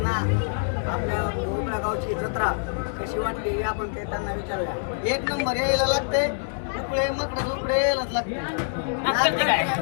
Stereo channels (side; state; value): right; silent; 61 dB below the other